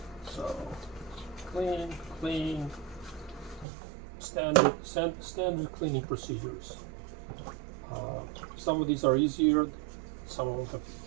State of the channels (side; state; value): left; drops out; at 3.7 s